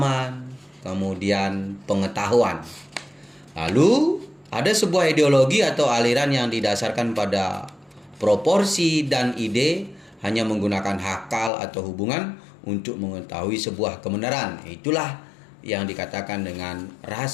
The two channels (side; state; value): right; drops out; at 11.5 s